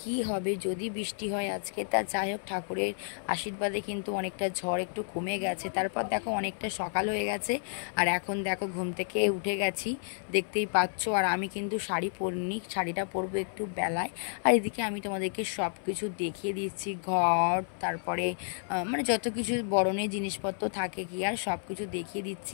হবে যদি বৃষ্টি হয় আজকে। তা যাই হোক, ঠাকুরের আশীর্বাদে কিন্তু অনেকটা ঝড় একটু কমে গেছে। তারপর দেখো অনেকটা সকাল হয়ে গেছে, আর এখন দেখো ঘুম থেকে উঠে গেছি, দেখতেই পাচ্ছ। আর আমি কিন্তু শাড়ি পরিনি, শাড়িটা পরবো একটু বেলায়। আর এদিকে আমি তোমাদেরকে সব কিছু দেখিয়ে দিচ্ছি, ঘর, তারপরে যত কিছু বরণের জিনিসপত্র থাকে কি আর, সব কিছু দেখিয়ে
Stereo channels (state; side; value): silent; right; 57 dB below the other